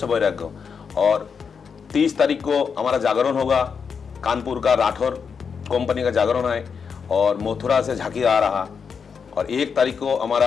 वैराग्य। और 30 तारीख को हमारा जागरण होगा, कानपुर का राठौर कंपनी का जागरण है और मथुरा से झांकी आ रहा। और 1 तारीख को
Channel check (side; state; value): right; quieter; 6.2 dB